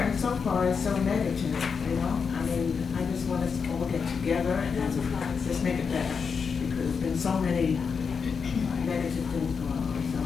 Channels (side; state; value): right; quieter; 5.8 dB